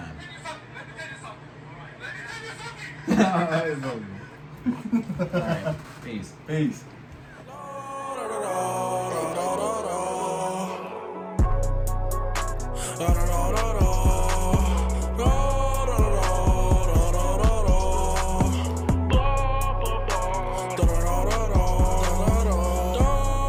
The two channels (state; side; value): identical; both; correlation 1.00